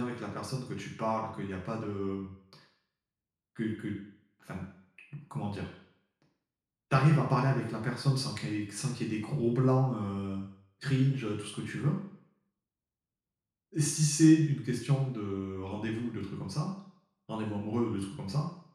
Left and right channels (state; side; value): identical; both; correlation 1.00